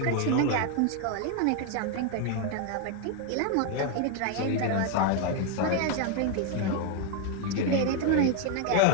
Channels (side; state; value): both; different; correlation 0.01